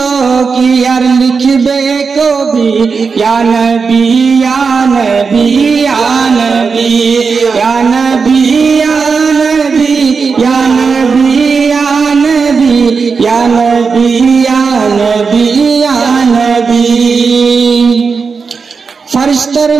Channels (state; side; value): quieter; left; 5.1 dB